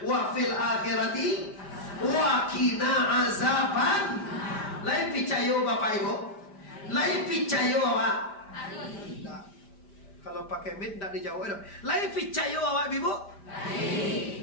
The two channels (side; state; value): right; late; 5.1 ms